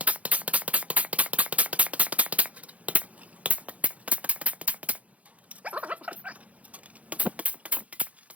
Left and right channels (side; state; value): left; late; 0.067 ms